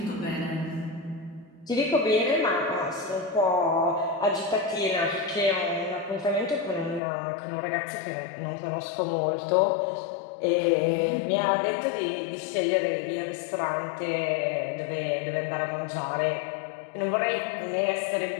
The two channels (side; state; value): right; drops out; at 7.0 s